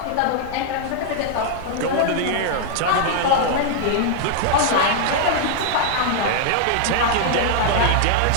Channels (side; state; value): both; different; correlation 0.00